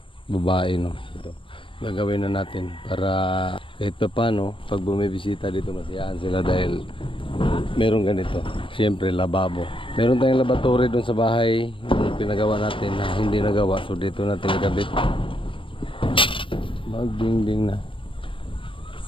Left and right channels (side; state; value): right; late; 0.25 ms